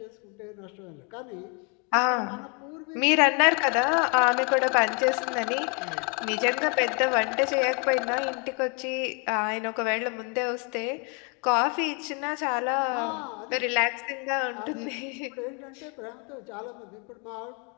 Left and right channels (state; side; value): quieter; right; 34.1 dB